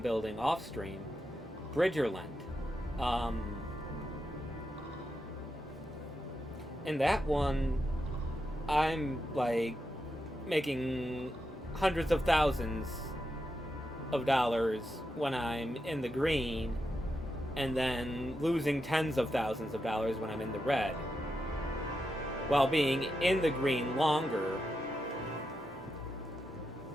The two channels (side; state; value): both; normal; correlation 0.86